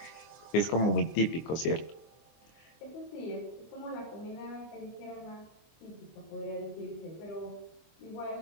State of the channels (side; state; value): right; late; 24 ms